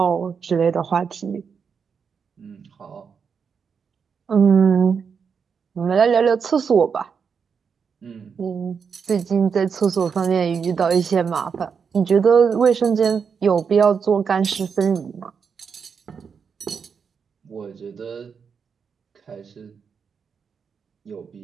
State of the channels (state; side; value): quieter; left; 6.3 dB